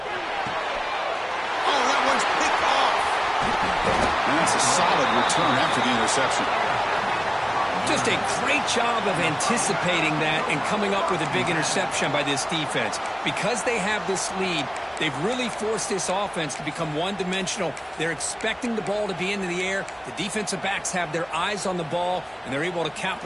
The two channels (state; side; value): identical; both; correlation 1.00